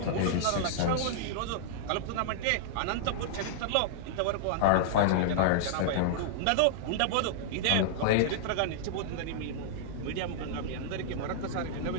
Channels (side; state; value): both; different; correlation -0.02